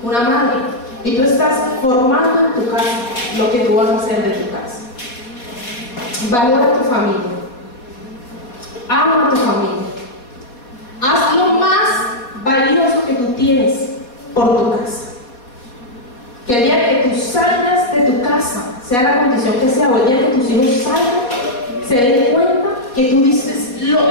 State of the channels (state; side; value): late; right; 4.2 ms